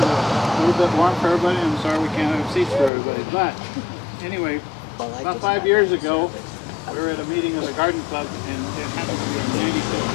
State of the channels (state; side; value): drops out; right; at 2.9 s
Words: a little bit warm for everybody. I'm sorry we can't have seats for everybody. But anyway, about 5 years ago, we were at a meeting of the Garden Club, and it happened to be the 95th